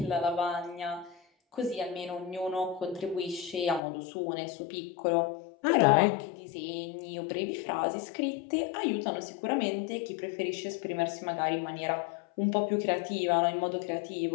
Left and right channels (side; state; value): right; drops out; at 3.8 s